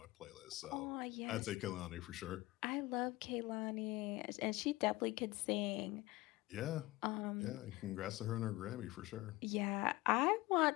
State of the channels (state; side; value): quieter; right; 20.1 dB